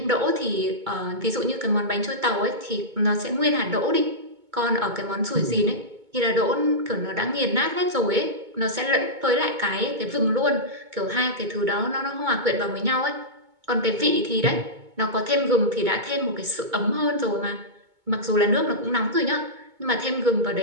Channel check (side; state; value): left; late; 2.2 ms